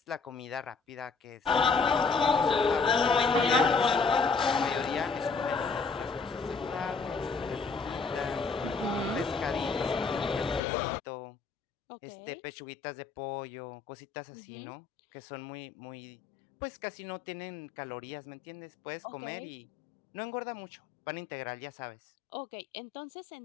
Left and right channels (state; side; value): drops out; right; at 10.6 s